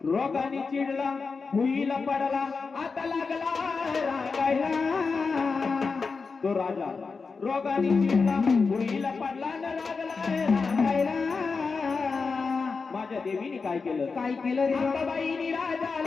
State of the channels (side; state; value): right; quieter; 4.7 dB